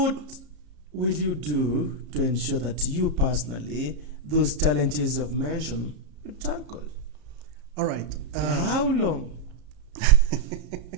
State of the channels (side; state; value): left; late; 33 ms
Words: will you do to ensure that you personally, those challenges you've mentioned, you tackle? All right. How long?